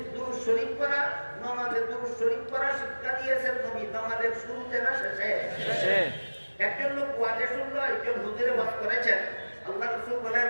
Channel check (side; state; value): both; inverted; correlation -1.00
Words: দুরূদ শরীফ পড়া, নামাজের দুরূদ শরীফ পড়া শিক্ষা দিয়েছেন নবী। নামাজের শুরুতে না শেষে? একজন লোক ওয়াজে শুনলো, একজন হুজুরে ওয়াজ করেছেন। আল্লাহ রাসূল বলেন,